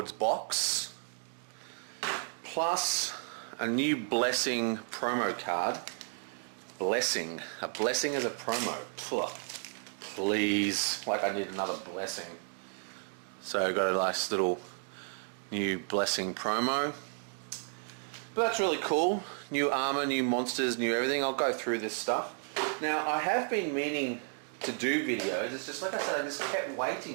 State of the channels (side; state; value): left; silent; 56 dB below the other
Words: box, plus a new Blessing promo card. Blessing. A blessing is a promo. Please. Like I need another blessing. So I got a nice little new Blessing promo. But that's really cool. New armor, new monsters, new everything. I'll go through this stuff. Now I have been meaning to do videos. It's just like I said, I just kept